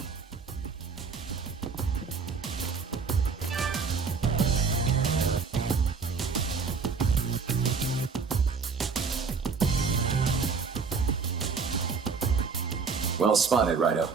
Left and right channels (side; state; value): left; quieter; 5.2 dB